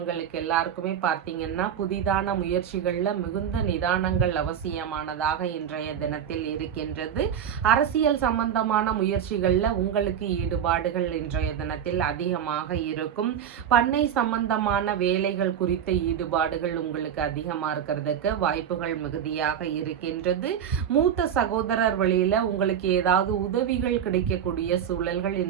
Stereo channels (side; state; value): left; quieter; 8.9 dB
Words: எல்லாருக்குமே பார்த்தீங்கன்னா புதிதான முயற்சிகள்ல மிகுந்த நிதானங்கள் அவசியமானதாக இன்றைய தினத்தில் இருக்கின்றது. அரசியல் சம்பந்தமான முயற்சிகள்ல உங்களுக்கு ஈடுபாடுகள் இன்றைய தினத்தில் அதிகமாக இருக்கும். பண்ணை சம்பந்தமான வேலைகள் குறித்த ஈடுபாடுகள் உங்களுக்கு அதிகமாக இருக்கிறதுக்கு வாய்ப்புகள் மிகுதியாக இருக்கின்றது. மூத்த சகோதரர் வழியில உங்களுக்கு ஏதாவது உதவிகள் கிடைக்கக்கூடிய சூழல்கள்